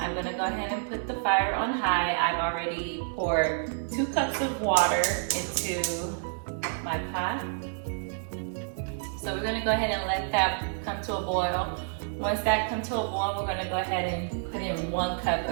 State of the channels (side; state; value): left; silent; digital silence